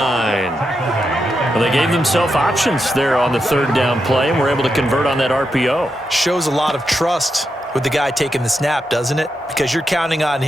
Well, they gave themselves options there on the 3rd down play and were able to convert on that RPO. Shows a lot of trust with the guy taking the snap, doesn't it? Because you're counting on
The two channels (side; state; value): both; normal; correlation 0.85